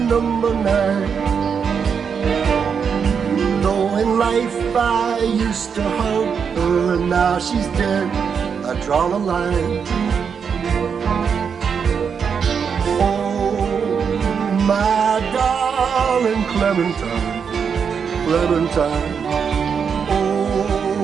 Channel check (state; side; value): quieter; left; 6.6 dB